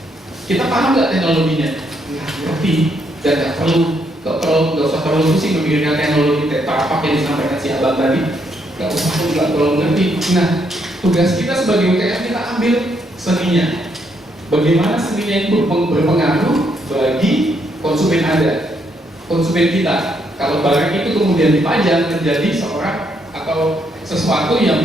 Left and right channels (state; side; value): normal; both; correlation 0.75